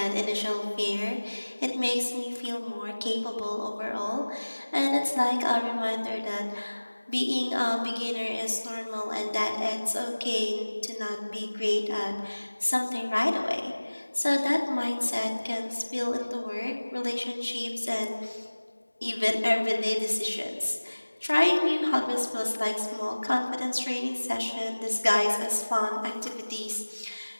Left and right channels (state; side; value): inverted; both; correlation -1.00